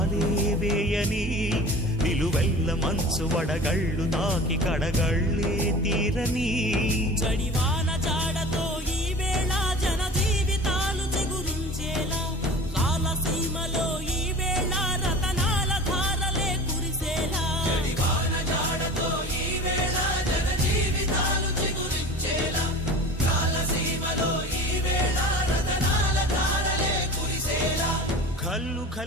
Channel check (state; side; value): normal; both; correlation 0.38